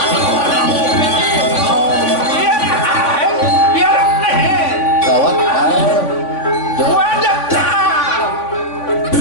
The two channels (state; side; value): late; right; 3.5 ms